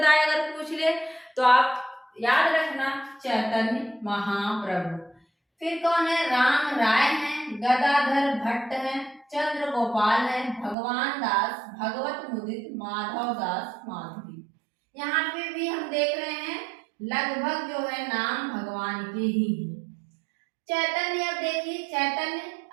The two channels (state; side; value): drops out; left; at 10.8 s